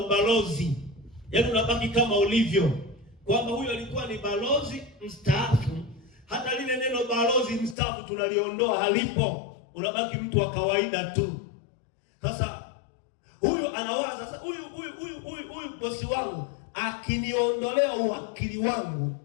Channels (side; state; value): right; drops out; at 7.8 s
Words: Yaani unabaki kama ulivyo, kwamba huyo alikuwa ni balozi mstaafu. Hata lile neno balozi mstaafu tunaliondoa, halipo. Unabaki mtu wa kawaida tu. Sasa huyu anawaza, sasa huyu bosi wangu akiniondolea uwakili wangu